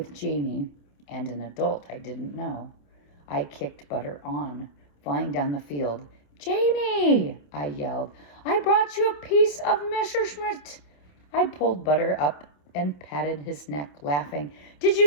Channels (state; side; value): late; right; 27 ms